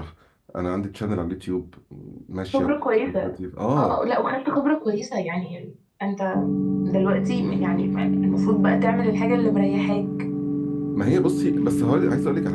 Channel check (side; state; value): both; identical; correlation 1.00